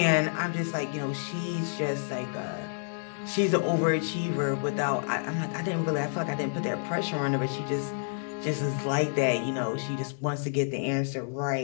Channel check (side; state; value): right; silent; digital silence